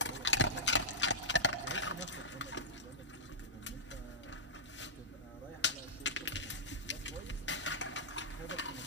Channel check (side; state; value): both; normal; correlation -0.12